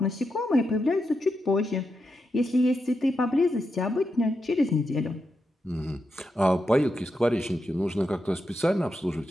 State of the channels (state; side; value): normal; both; correlation 0.86